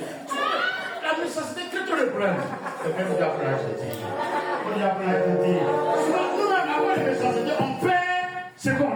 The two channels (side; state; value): both; identical; correlation 1.00